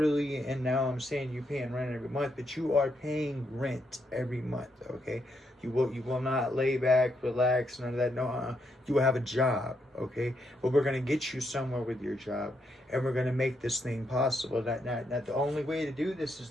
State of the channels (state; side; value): normal; both; correlation 0.78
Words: and now I'm saying you're paying rent every month, but you are paying rent every month. Okay, you will not lay back, relax, none of that. No, you will have a job. Okay, but we're gonna get you somewhere with your job, and we're gonna make this thing possible. That the only way to do this is